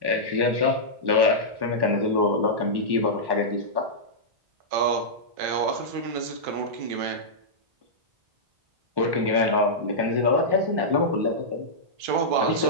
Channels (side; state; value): left; late; 1.1 ms